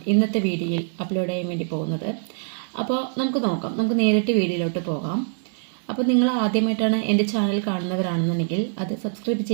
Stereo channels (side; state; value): left; silent; digital silence